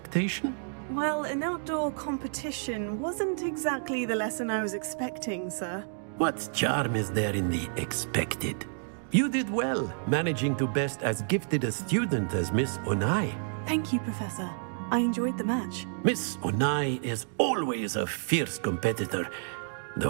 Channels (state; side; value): silent; left; digital silence